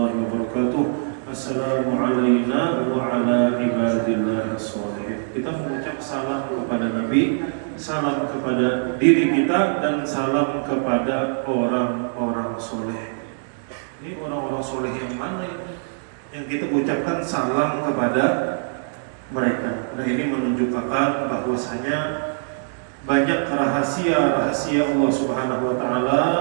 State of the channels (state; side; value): silent; left; digital silence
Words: wa barakatuh, Assalamu alayna wa ala ibadillahi sholihin. Kita mengucap salam kepada Nabi, salam kepada diri kita, dan salam kepada orang-orang soleh. Ini orang-orang soleh yang mana ini? Yang kita ucapkan salam kepada mereka. Nah, ini menunjukkan bahwasanya banyak rahasia-rahasia Allah Subhanahu wa taala